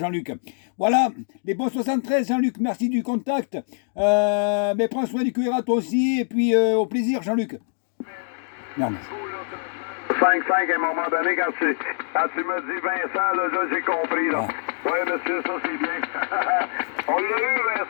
Voilà, les bons 73, Jean-Luc. Merci du contact. Mais prends soin du QRA toi aussi. Et puis, au plaisir, Jean-Luc. Merde. 5-5 à un moment donné, quand tu me dis Vincent, là j'ai compris. Là. Ah. Oui, monsieur, ça c'est bien. On l'a eu,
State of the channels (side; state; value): right; silent; digital silence